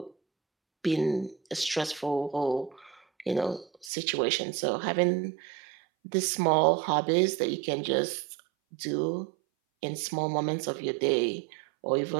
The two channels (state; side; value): drops out; left; at 3.9 s